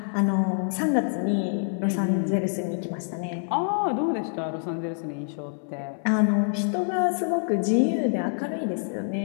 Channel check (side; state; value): right; silent; 61 dB below the other